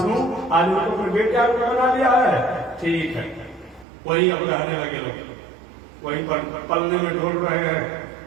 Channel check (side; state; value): left; drops out; at 3.9 s